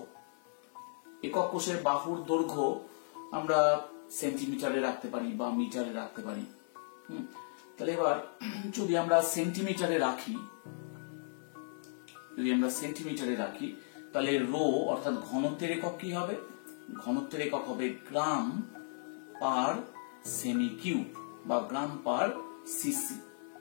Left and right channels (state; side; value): silent; right; 54 dB below the other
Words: একক কোষের বাহুর দৈর্ঘ্য আমরা সেন্টিমিটারে রাখতে পারি বা মিটারে রাখতে পারি। তাহলে এবার যদি আমরা সেন্টিমিটারে রাখি তাহলে রো অর্থাৎ ঘনত্বের একক কি হবে? ঘনত্বের একক হবে গ্রাম পার সেমি কিউব বা গ্রাম পার সিসি।